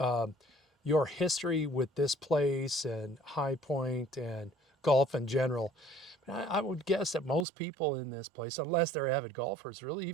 your history with this place and High Point and golf in general. I would guess that most people in this place, unless they're avid golfers, really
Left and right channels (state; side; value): drops out; left; at 7.5 s